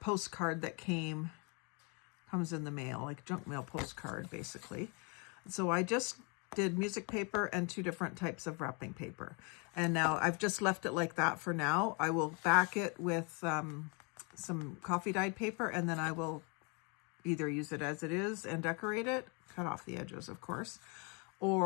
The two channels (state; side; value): quieter; right; 33.2 dB